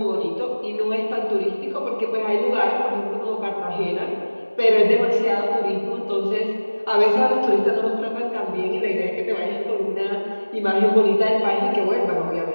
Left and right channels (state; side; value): inverted; both; correlation -1.00